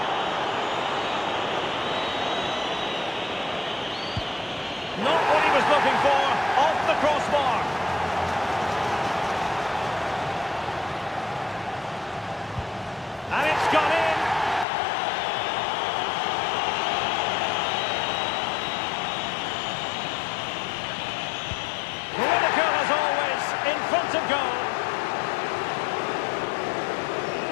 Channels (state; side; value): drops out; right; at 14.7 s